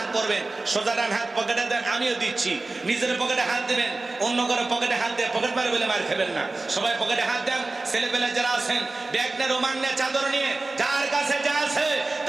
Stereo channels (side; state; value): left; quieter; 3.2 dB